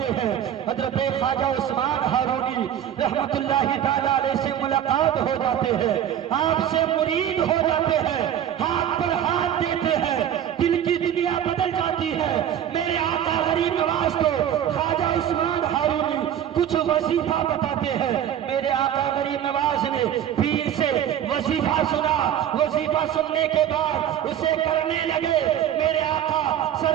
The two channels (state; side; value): quieter; left; 10.2 dB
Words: ہیں۔ حضرت خواجہ عثمان ہارونی رحمت اللہ تعالی علیہ سے ملاقات ہو جاتے ہیں، آپ سے مرید ہو جاتے ہیں، ہاتھ پر ہاتھ دیتے ہیں، دل کی دنیا بدل جاتی ہے۔ میرے آقا غریب نواز کو خواجہ عثمان ہارونی کچھ وظیفہ بتاتے ہیں۔ میرے آقا غریب نواز نے پیر سے وظیفہ سنا، وظیفہ سننے کے بعد اسے کرنے لگے۔ میرے آقا